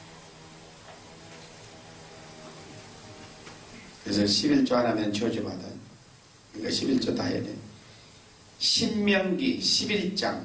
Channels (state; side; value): identical; both; correlation 1.00